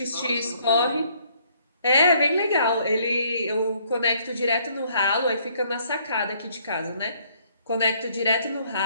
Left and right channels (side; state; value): both; inverted; correlation -0.65